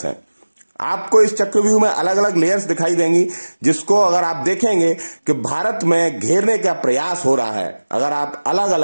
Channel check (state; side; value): inverted; both; correlation -1.00